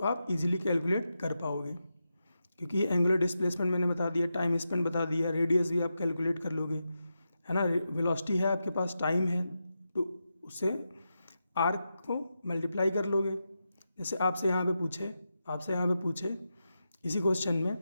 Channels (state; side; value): inverted; both; correlation -0.88